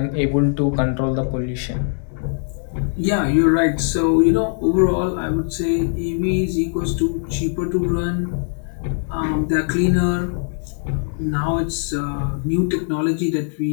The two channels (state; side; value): silent; right; digital silence